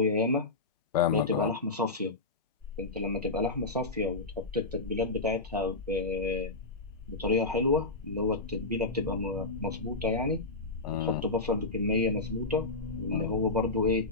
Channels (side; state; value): right; quieter; 3.3 dB